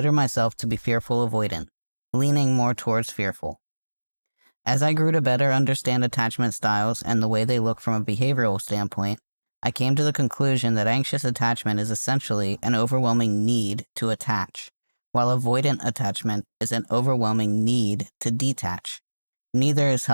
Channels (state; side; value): inverted; both; correlation -1.00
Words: myself to be fearful avoidant, leaning more towards fearful. As I grew to better understand attachment styles and the way they look from a behavioral standpoint, I came to the conclusion that anxious attachment is essentially an overwhelming need to attach, while avoidant attachment is an overwhelming need to detach. Neither is